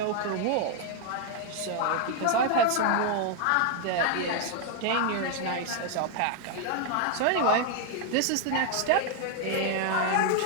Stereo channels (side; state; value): both; different; correlation 0.01